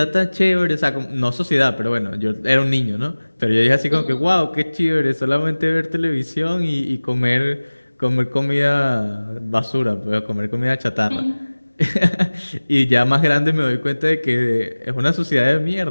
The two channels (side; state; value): both; inverted; correlation -1.00